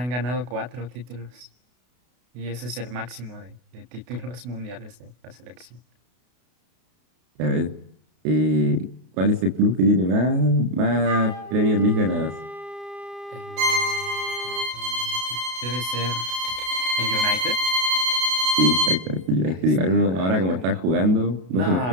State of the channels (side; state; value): left; late; 32 ms